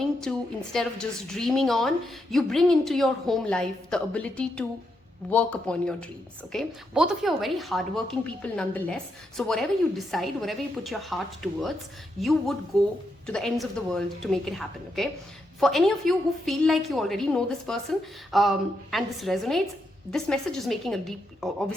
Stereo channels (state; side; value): normal; both; correlation 0.82